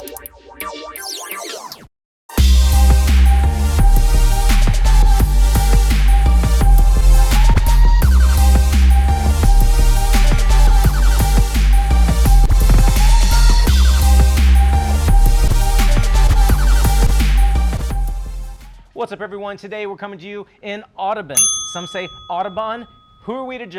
What's up everyone? Today we're coming to you in Audubon. Some say Audubon, who are we to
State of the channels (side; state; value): both; identical; correlation 1.00